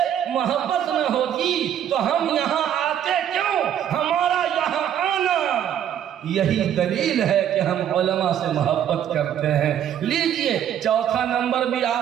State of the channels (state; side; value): quieter; left; 9.9 dB